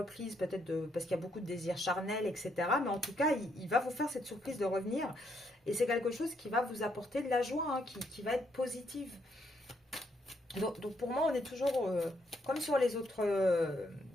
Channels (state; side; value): normal; both; correlation 0.74